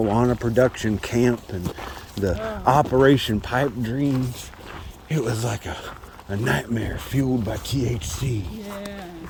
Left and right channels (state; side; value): identical; both; correlation 1.00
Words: production camp and the Operation Pipe Dreams. It was like a nightmare fueled by THC. Yeah.